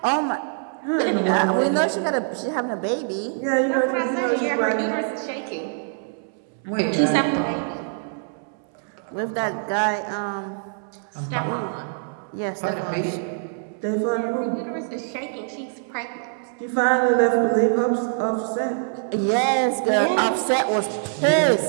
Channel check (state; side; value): silent; left; 63 dB below the other